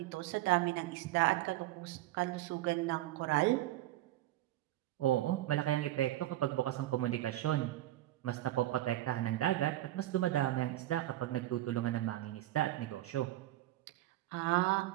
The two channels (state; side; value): quieter; left; 15.3 dB